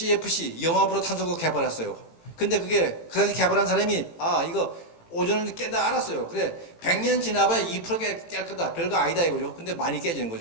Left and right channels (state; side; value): late; right; 18 ms